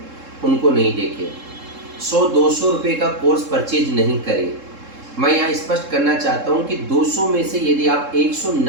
उनको नहीं देखें। 100-200 रुपये का कोर्स परचेज नहीं करें। मैं यहाँ स्पष्ट करना चाहता हूँ कि 200 में से यदि आप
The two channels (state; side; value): late; left; 3.7 ms